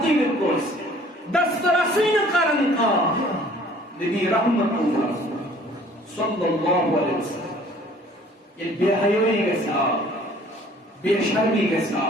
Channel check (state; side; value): normal; both; correlation 0.54